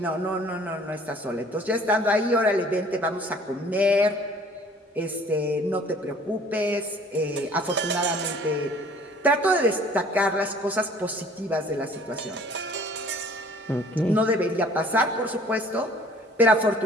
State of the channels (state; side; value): normal; both; correlation 0.53